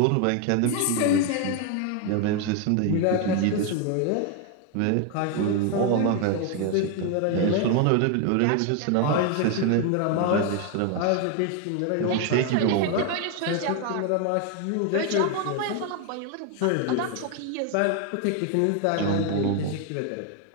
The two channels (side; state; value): both; different; correlation 0.01